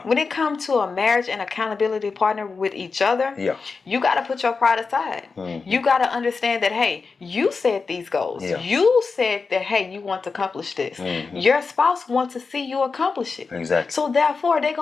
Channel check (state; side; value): quieter; right; 4.7 dB